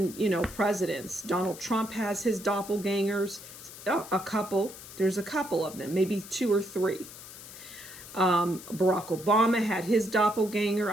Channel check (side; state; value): left; noise; hiss, 15 dB below the sound